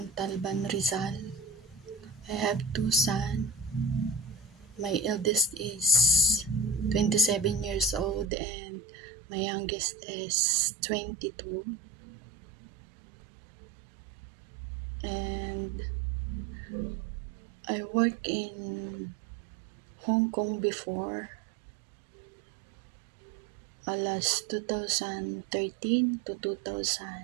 Rizal. I have two sons. My eldest is 27 years old and my youngest is 22. And I worked in Hong Kong before. Last 2013 to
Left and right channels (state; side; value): drops out; left; at 8.3 s